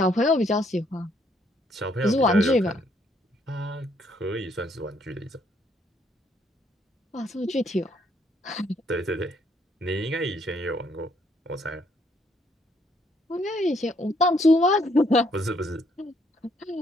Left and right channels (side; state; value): both; normal; correlation 0.69